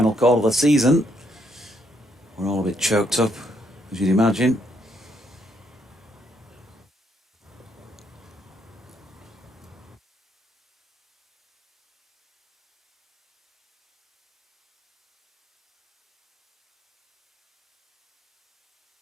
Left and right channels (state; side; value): normal; both; correlation 0.73